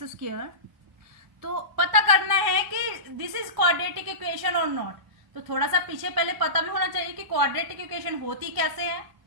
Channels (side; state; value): left; late; 1.0 ms